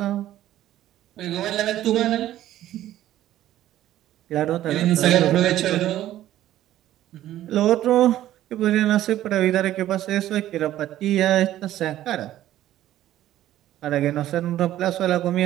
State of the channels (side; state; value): left; quieter; 13.3 dB